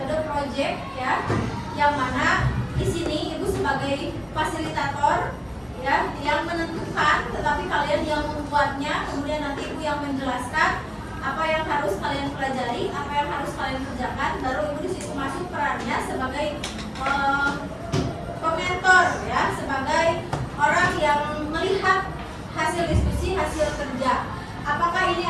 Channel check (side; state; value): both; identical; correlation 1.00